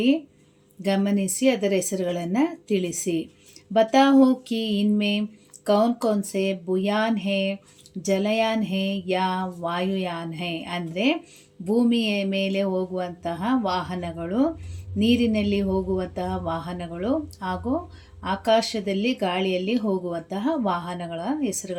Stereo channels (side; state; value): both; identical; correlation 1.00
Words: ಗಮನಿಸಿ ಅದರ ಹೆಸರುಗಳನ್ನು ತಿಳಿಸಿ. बताओ कि इनमें कौन कौन से बुयान है, ಜಲಯಾನ್ ಹೇ ಯಾ ವಾಯುಯಾನ್ ಹೇ, ಅಂದರೆ ಭೂಮಿಯ ಮೇಲೆ ಹೋಗುವಂತಹ ವಾಹನಗಳು, ನೀರಿನಲ್ಲಿ ಹೋಗುವಂತಹ ವಾಹನಗಳು ಹಾಗೂ ಆಕಾಶದಲ್ಲಿ ಗಾಳಿಯಲ್ಲಿ ಹೋಗುವಂತಹ ವಾಹನಗಳ